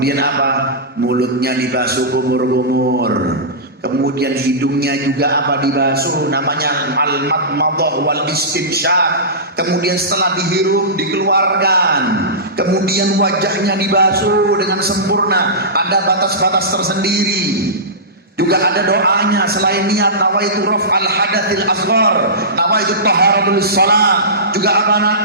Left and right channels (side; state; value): both; normal; correlation -0.19